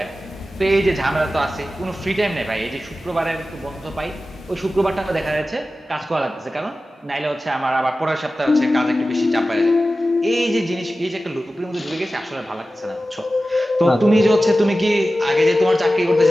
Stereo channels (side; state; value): both; normal; correlation 0.95